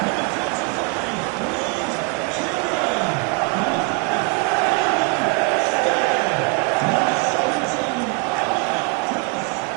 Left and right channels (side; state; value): left; quieter; 30.7 dB